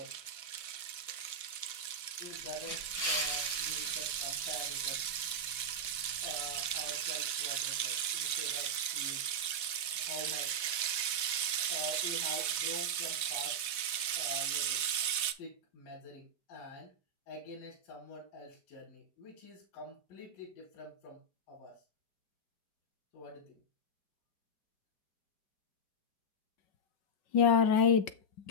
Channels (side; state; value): right; late; 4.1 ms